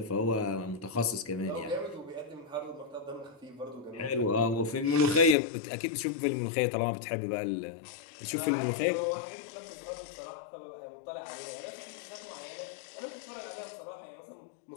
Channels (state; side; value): drops out; right; at 5.4 s